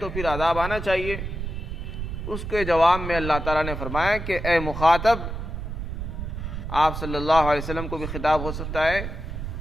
پھر عذاب آنا چاہیے۔ اس کے جواب میں اللہ تعالیٰ نے فرمایا کہ اے مخاطب، آپ صلی اللہ علیہ وسلم کو بھی خطاب ہو سکتا ہے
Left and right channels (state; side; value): noise; right; rumble, 6 dB below the sound